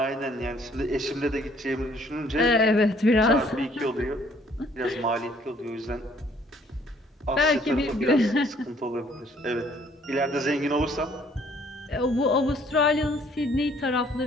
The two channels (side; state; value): both; normal; correlation 0.61